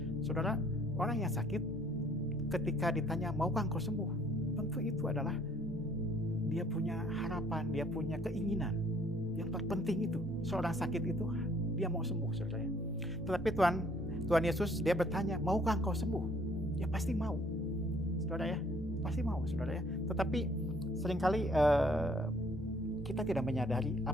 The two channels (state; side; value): normal; both; correlation 0.61